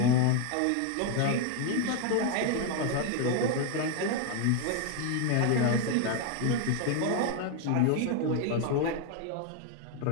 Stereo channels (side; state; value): both; different; correlation 0.01